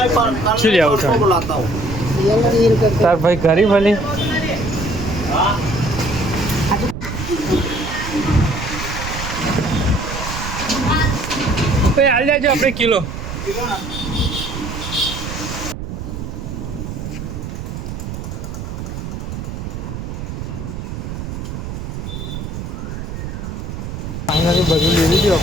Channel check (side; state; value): right; noise; rumble, 7 dB below the sound